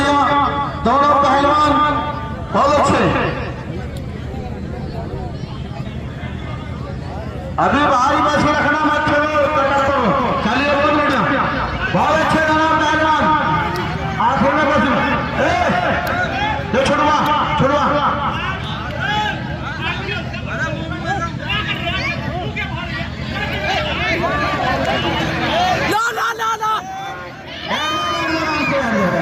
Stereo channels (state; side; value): identical; both; correlation 1.00